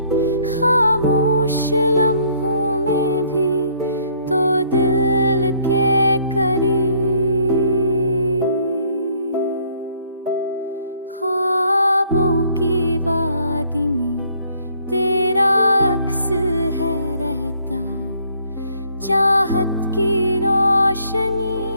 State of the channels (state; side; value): inverted; both; correlation -0.64